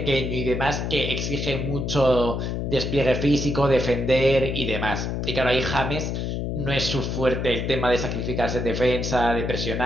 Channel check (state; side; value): noise; left; hum, 2 dB below the sound